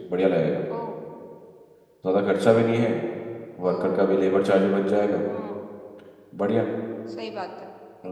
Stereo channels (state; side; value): identical; both; correlation 1.00